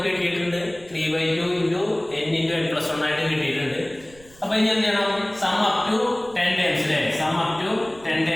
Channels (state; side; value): noise; right; rumble, 25 dB below the sound